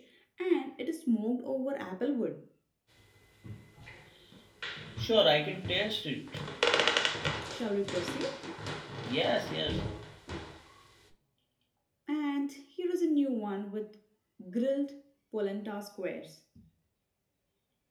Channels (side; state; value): both; identical; correlation 1.00